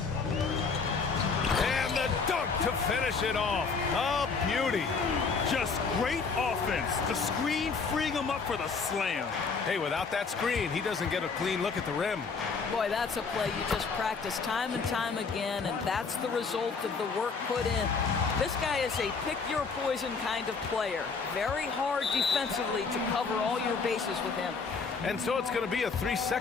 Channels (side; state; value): right; quieter; 5.0 dB